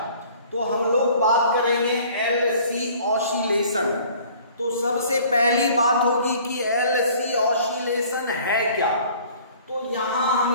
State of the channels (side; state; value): both; inverted; correlation -0.52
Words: तो हम लोग बात करेंगे एलसी ऑसिलेशन। तो सबसे पहली बात होगी कि एलसी ऑसिलेशन है क्या। तो यहां